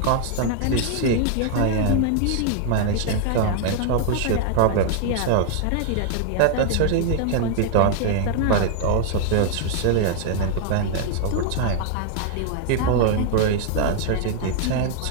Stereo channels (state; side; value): different; both; correlation 0.00